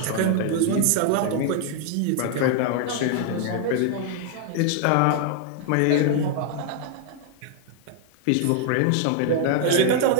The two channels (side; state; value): both; different; correlation 0.00